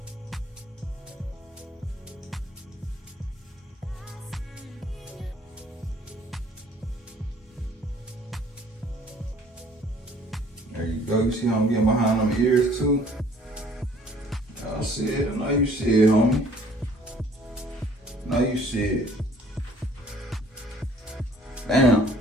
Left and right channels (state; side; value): normal; both; correlation 0.56